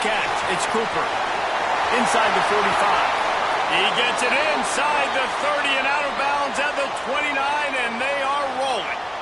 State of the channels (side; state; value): both; identical; correlation 1.00